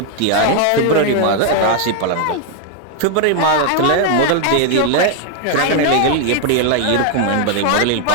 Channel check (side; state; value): both; different; correlation 0.00